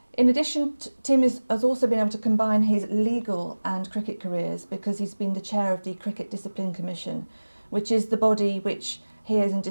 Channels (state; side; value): inverted; both; correlation -1.00